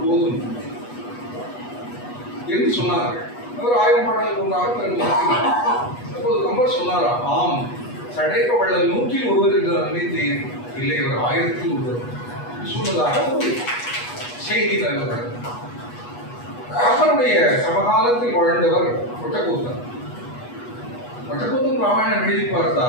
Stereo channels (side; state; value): right; late; 8.2 ms